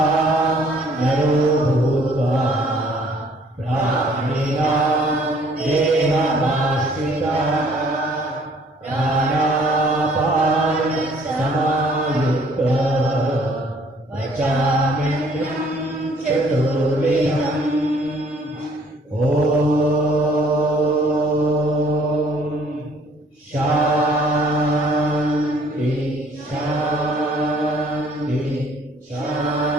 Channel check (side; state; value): both; normal; correlation 0.59